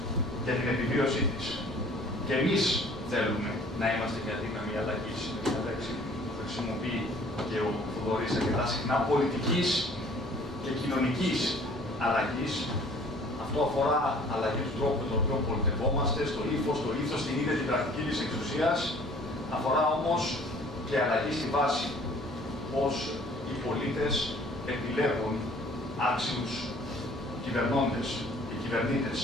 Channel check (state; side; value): normal; both; correlation 0.53